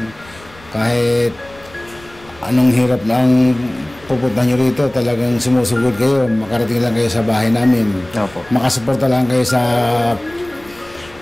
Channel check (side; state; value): left; noise; rumble, 24 dB below the sound